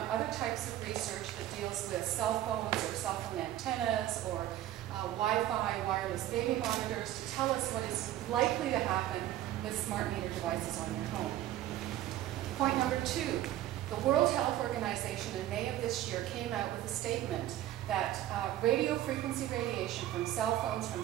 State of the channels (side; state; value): left; quieter; 13.4 dB